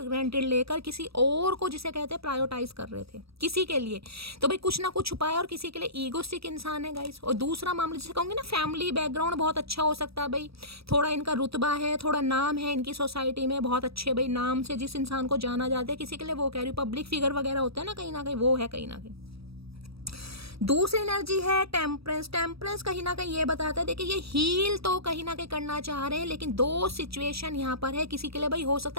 ग्रांटेड लेकर किसी और को, जिसे कहते हैं, प्रायोरिटाइज कर रहे थे किसी के लिए, तो भाई कुछ ना कुछ छुपाया, और किसी के लिए ईगोस्टिक इंसान है गाइस। और दूसरा मामला जिसे कहूँगी ना, फैमिली बैकग्राउंड बहुत अच्छा हो सकता है, भाई थोड़ा इनका रुतबा है, थोड़ा नाम है इनकी सोसाइटी में, बहुत अच्छे भाई नाम से जिस इंसान को जाना जाता है, किसी के लिए वो कह रही हूँ पब्लिक फिगर वगैरह होता है ना कहीं वो है कहीं ना कहीं। दूसरी एनर्जी है टेम्परेंस। टेम्परेंस कहीं ना कहीं ये बताता है, देखिए ये हील तो कहीं ना कहीं करना चाह रहे हैं, लेकिन दो सिचुएशन यहाँ पर है। किसी के लिए भाई हो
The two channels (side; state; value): left; late; 0.77 ms